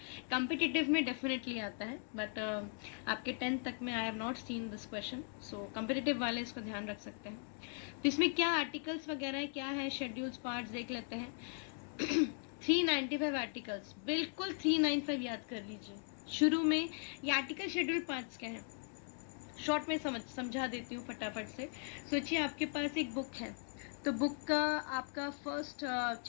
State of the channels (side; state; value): right; silent; 52 dB below the other